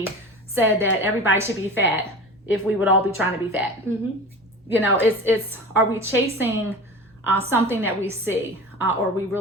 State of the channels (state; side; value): normal; both; correlation 0.34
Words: said that everybody should be fat, if we would all be trying to be fat. You know, it's are we chasing something that we see, or are we